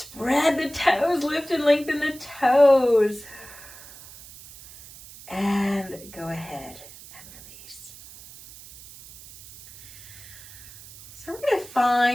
the toes, lift and lengthen the toes. And go ahead and release. So we're going to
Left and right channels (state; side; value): noise; right; hiss, 18 dB below the sound